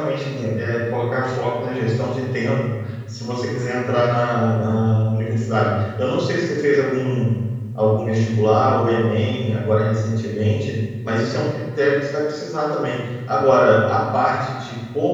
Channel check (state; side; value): identical; both; correlation 1.00